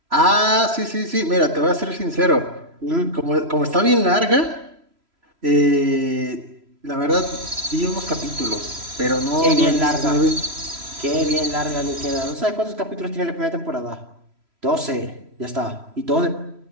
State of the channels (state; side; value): late; left; 3.0 ms